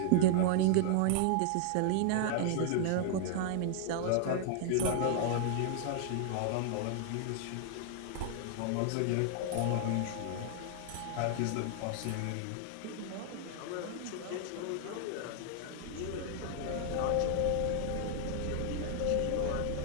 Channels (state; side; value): different; both; correlation -0.01